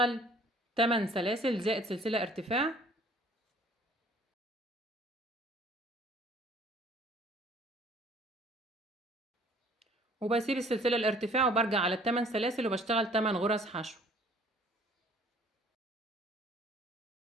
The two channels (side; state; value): both; normal; correlation 0.55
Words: 8 سلاسل زائد سلسلة ارتفاع، وبسيب السلسلة الارتفاع وبرجع على ال8 سلاسل وبشتغل 8 غرز حشو.